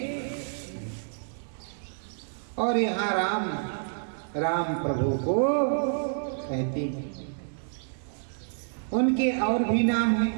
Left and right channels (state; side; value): silent; left; digital silence